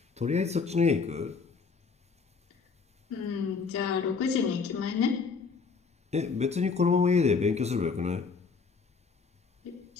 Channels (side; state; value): right; quieter; 5.1 dB